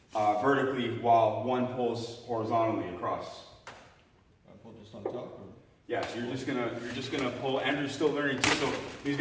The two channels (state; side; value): identical; both; correlation 1.00